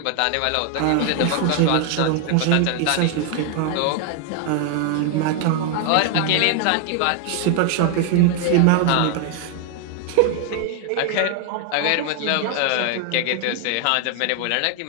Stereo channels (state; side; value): different; both; correlation 0.00